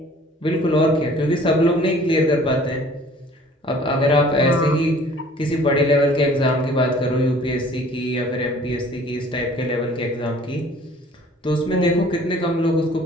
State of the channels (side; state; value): both; normal; correlation 0.52